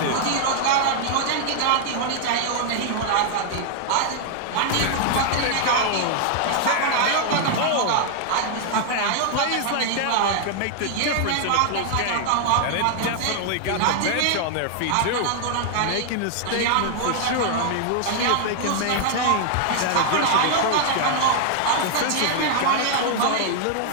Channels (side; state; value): both; different; correlation 0.00